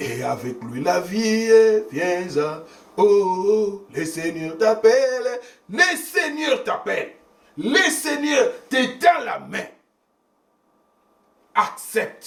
avec lui la vie, viens à... Oh, le Seigneur t'appelle, le Seigneur t'appelle. Le Seigneur te tend la main.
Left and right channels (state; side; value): identical; both; correlation 1.00